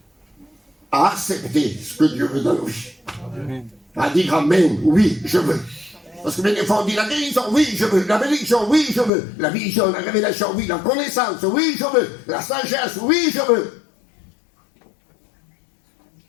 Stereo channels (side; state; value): right; drops out; at 9.1 s